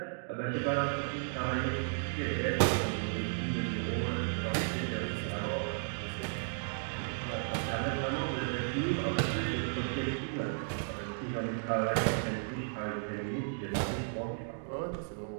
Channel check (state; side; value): silent; left; digital silence